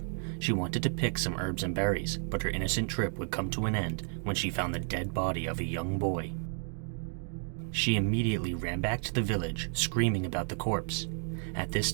She wanted to pick some herbs and berries, but her innocent trip would come to an end when she found the dead body of a young boy. She immediately ran back to the village, screaming about the corpse. At this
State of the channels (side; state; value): left; silent; 56 dB below the other